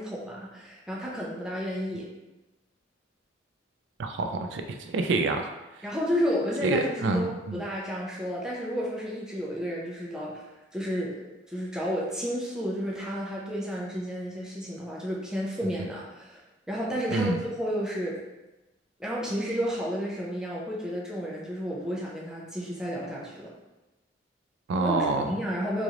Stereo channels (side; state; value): both; normal; correlation 0.58